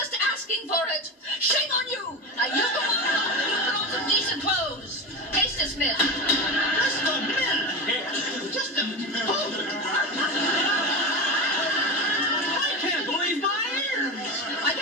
asking for it. Shame on you. Now you go on home and you put on some decent clothes. Case dismissed. Just a minute here. Just a minute. Hold it. I can't believe my ears. I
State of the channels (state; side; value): normal; both; correlation 0.22